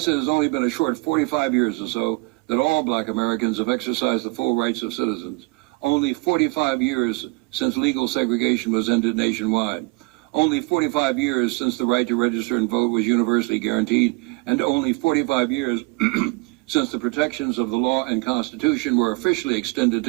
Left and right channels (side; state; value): left; quieter; 27.5 dB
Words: it has only been a short 45 years or so that all black Americans have exercised the full rights of citizens. Only 45 years since legal segregation was ended nationwide. Only 45 years since the right to register and vote was universally guaranteed, and only 45 years since the protections of the law and Constitution were officially extended